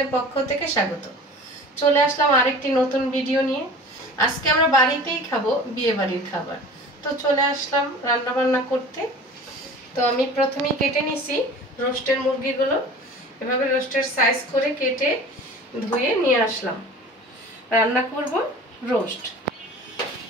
এর পক্ষ থেকে স্বাগত। চলে আসলাম আরেকটি নতুন ভিডিও নিয়ে। আজকে আমরা বাড়িতেই খাবো বিয়ে বাড়ির খাবার। তো চলে আসলাম রান্না বান্না করতে। তো আমি প্রথমেই কেটে নিছি রোস্টের মুরগিগুলো। এভাবে রোস্টের সাইজ করে কেটে ধুয়ে নিয়ে আসলাম। রান্না করব রোস্ট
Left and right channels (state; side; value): normal; both; correlation 0.41